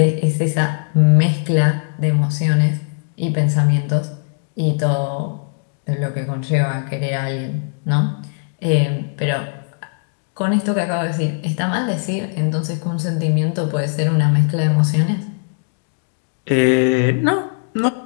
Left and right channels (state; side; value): silent; right; digital silence